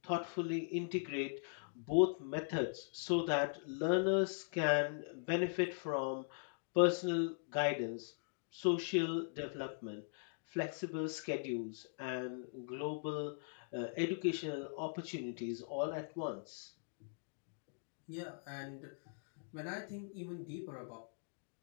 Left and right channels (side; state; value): right; silent; digital silence